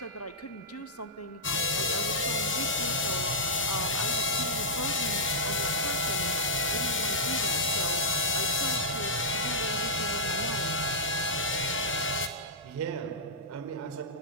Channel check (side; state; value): both; normal; correlation -0.10